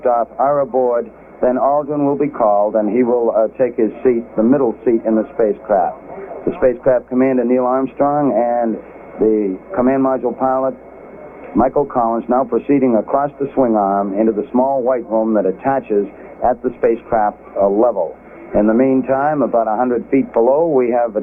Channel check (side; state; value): both; identical; correlation 1.00